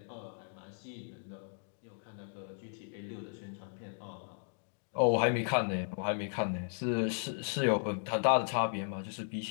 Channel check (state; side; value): silent; right; digital silence